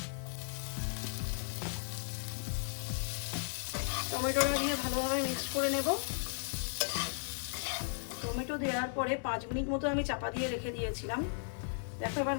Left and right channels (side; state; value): right; silent; digital silence